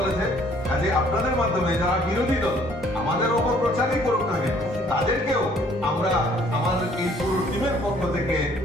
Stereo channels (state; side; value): normal; both; correlation 0.60